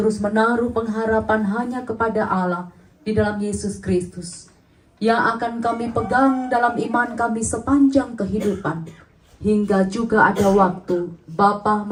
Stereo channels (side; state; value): both; identical; correlation 1.00